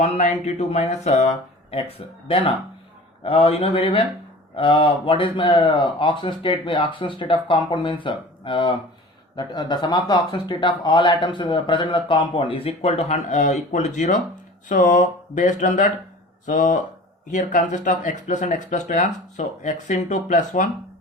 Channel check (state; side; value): normal; both; correlation 0.40